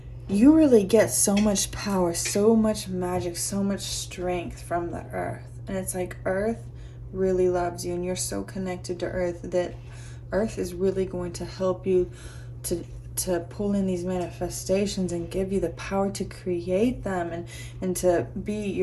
you really get so much power, so much magic, so much strength from the earth. And it's like earth really loves you, and you're so connected to earth that earth is really going to help you to pull in these manifestations and give you the power to create them, and to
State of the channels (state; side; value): identical; both; correlation 1.00